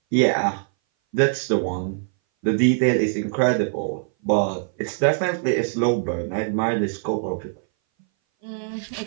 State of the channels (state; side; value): silent; left; 59 dB below the other